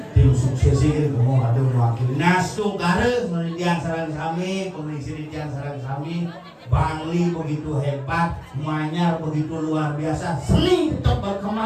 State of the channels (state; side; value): identical; both; correlation 1.00